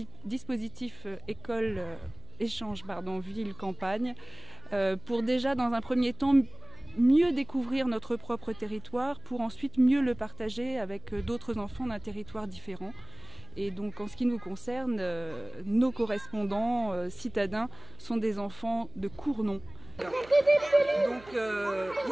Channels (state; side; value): noise; right; hum, 20 dB below the sound